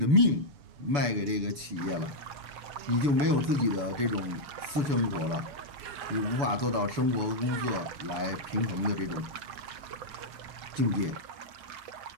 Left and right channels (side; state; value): left; late; 6.9 ms